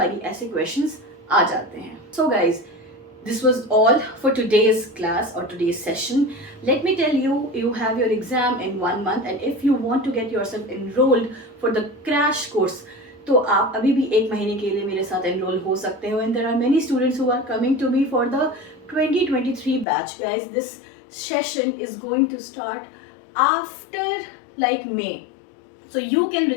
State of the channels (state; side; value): drops out; right; at 19.9 s